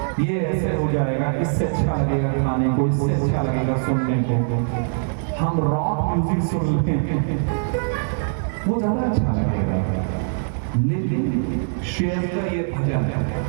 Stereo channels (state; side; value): silent; left; digital silence